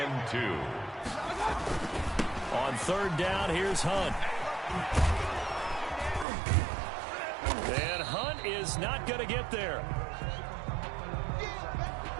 2. On 3rd down, here's Hunt. And Hunt is not going to get there.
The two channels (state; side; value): drops out; left; at 6.2 s